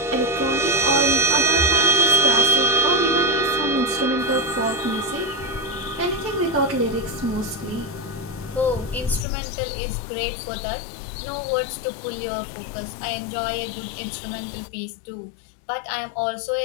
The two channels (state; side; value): drops out; right; at 9.2 s